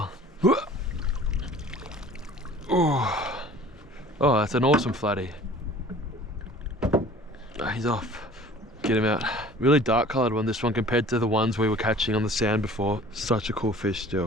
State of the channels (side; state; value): both; normal; correlation 0.47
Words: Oh, that's an awesome flatty. Oh, he's off. Get him out. Really dark coloured one, this one, compared to the ones we were catching on the sand before. Such a cool fish